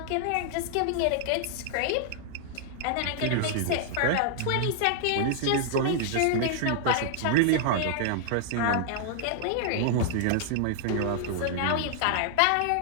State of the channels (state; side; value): different; both; correlation 0.00